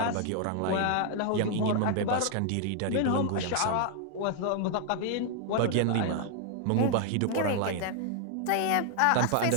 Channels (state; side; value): different; both; correlation 0.00